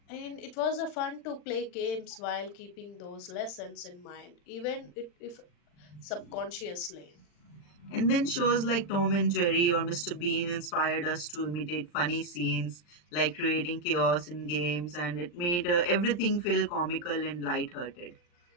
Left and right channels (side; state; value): right; late; 40 ms